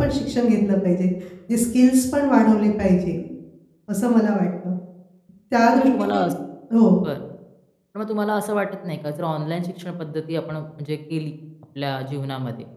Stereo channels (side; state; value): both; identical; correlation 1.00